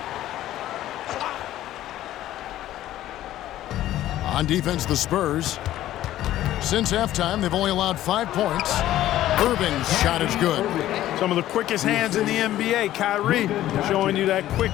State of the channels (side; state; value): right; quieter; 13.7 dB